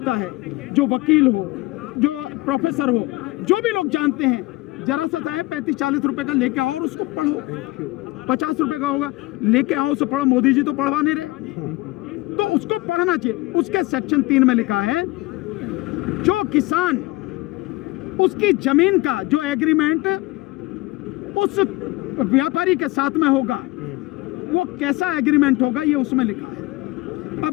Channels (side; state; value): right; quieter; 20.8 dB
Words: है, जो वकील हो, जो प्रोफेसर हो, जो भी लोग जानते हैं, जरा सा चाहे 35-40 रुपए का लेके आओ और उसको पढ़ो, 50 रुपए का होगा, लेके आओ उसे पढ़ो। मोदी जी तो पढ़वा नहीं रहे, तो उसको पढ़ना चाहिए। उसके सेक्शन 3 में लिखा है, जो किसान उसकी जमीन का जो एग्रीमेंट उस व्यापारी के साथ में होगा, वो कैसा एग्रीमेंट होगा, ये उसमें लिखा है।